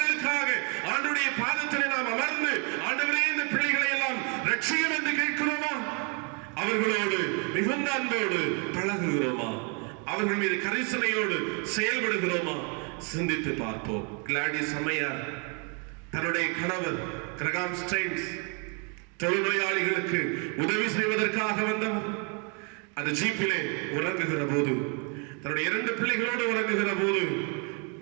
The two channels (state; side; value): quieter; left; 36.0 dB